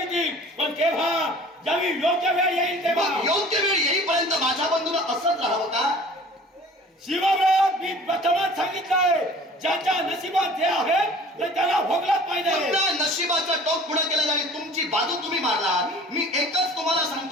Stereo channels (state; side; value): normal; both; correlation 0.46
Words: पण केव्हा? ज्यावेळी योग्य वेळ येईल तेव्हा. योग्य वेळ येईपर्यंत माझ्या बंधूनं असंच राहावं का? शिवव्रत मी प्रथमच सांगितलंय, ज्याच्या नशिबात जे आहे ते त्याला भोगलाच पाहिजे. नशिबाचं टोक पुढे केलं आणि तुमची बाजू तुम्ही मारलात. मी एकच तुम्हाला